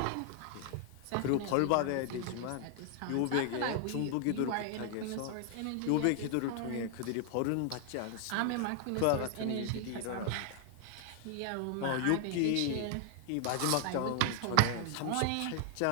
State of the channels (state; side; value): different; both; correlation 0.00